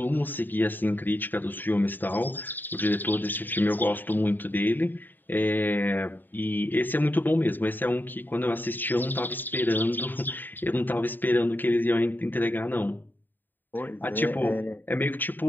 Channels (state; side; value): late; right; 0.091 ms